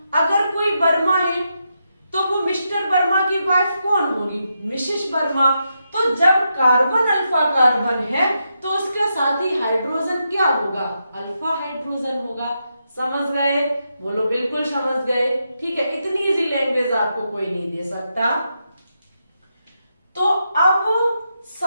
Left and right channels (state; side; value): inverted; both; correlation -0.84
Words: अगर कोई वर्मा है तो वो मिस्टर वर्मा की वाइफ कौन होगी? मिसेस वर्मा। तो जब कार्बन अल्फा कार्बन है तो उसके साथ ही हाइड्रोजन क्या होगा? अल्फा हाइड्रोजन होगा। समझ गए? बोलो बिल्कुल समझ गए। ठीक है, इतनी इजी लैंग्वेज आपको कोई नहीं दे सकता। तो अब